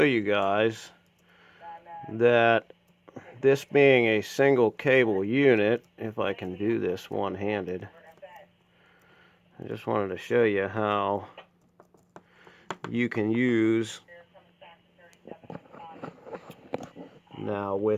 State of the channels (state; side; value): identical; both; correlation 1.00